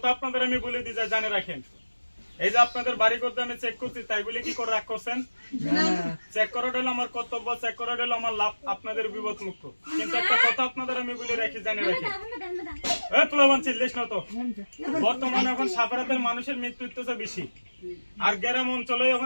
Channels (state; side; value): inverted; both; correlation -1.00